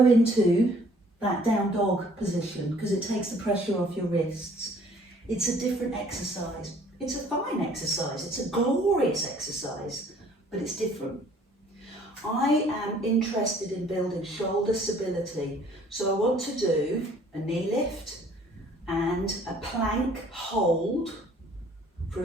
into that down dog position because it takes the pressure off your wrists. It's a different exercise. It's a fine exercise. It's a glorious exercise, but it's different. I am interested in building shoulder stability. So I want to do a knee lift and a plank hold for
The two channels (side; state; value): both; normal; correlation 0.57